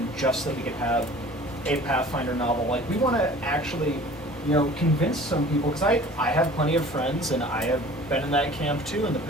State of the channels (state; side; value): normal; both; correlation 0.45